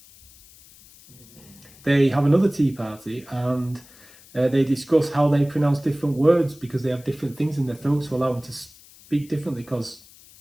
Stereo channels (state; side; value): noise; left; hiss, 24 dB below the sound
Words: They have another tea party and they discuss how they pronounce different words because they have different things in their throats to allow them to speak differently because